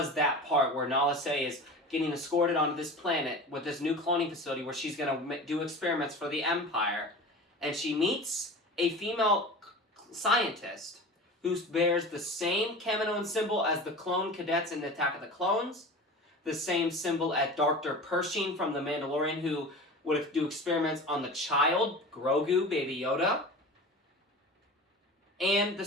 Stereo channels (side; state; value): both; normal; correlation 0.35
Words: that part where Nala Se is getting escorted onto this planet with this new cloning facility where she's going to do experiments for the Empire. And she meets a female scientist who bears the same Kaminoan symbol as the clone cadets in the Attack of the Clones, the same symbol as Dr. Pershing from The Mandalorian, who would do experiments on the child, Grogu, Baby Yoda, and the